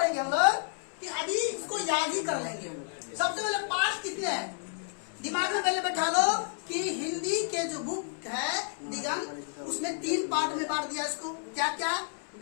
हम लोग कि अभी इसको याद ही कर लेंगे। सबसे पहले पाठ कितने हैं दिमाग में पहले बैठा लो कि हिंदी के जो बुक है दिगंत, उसमें 3 पार्ट में बांट दिया इसको। क्या क्या?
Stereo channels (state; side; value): silent; right; 57 dB below the other